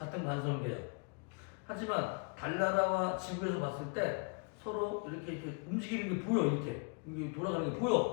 관성계야. 하지만 달나라와 지구에서 봤을 때 서로 이렇게 움직이는 게 보여. 이렇게. 이게 돌아가는 게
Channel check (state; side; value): quieter; right; 36.2 dB